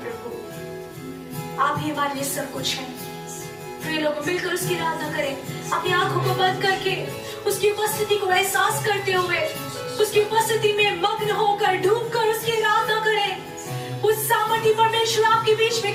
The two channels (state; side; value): identical; both; correlation 1.00